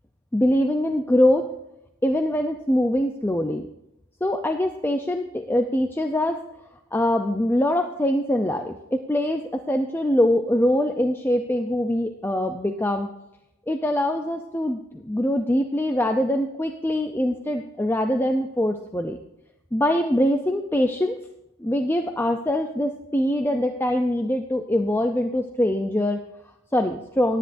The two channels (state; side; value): normal; both; correlation 0.85